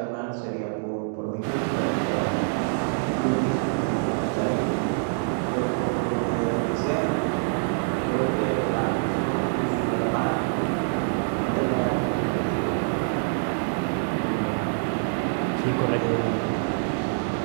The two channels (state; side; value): silent; left; digital silence